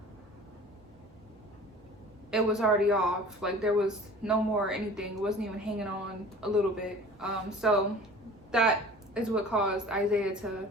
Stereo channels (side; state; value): both; normal; correlation 0.44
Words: it was already off. Like, there was no more anything. It wasn't even hanging on a little bit. So that is what caused Isaiah to